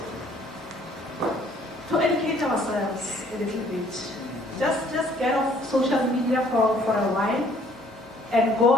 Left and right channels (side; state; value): both; normal; correlation 0.60